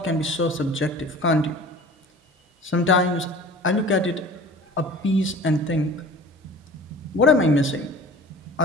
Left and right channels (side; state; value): both; normal; correlation 0.43